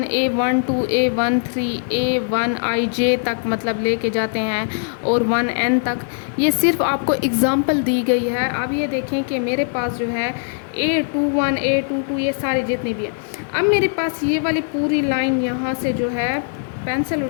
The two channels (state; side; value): silent; right; digital silence